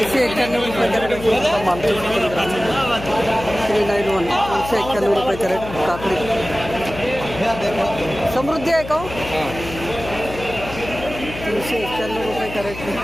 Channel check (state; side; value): noise; left; hum, 11 dB below the sound